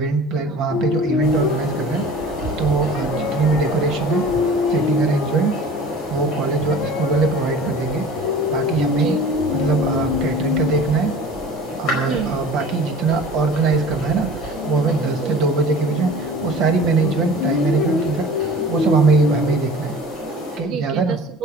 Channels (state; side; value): normal; both; correlation 0.42